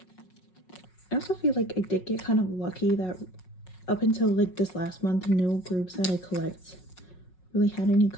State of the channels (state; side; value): late; right; 5.4 ms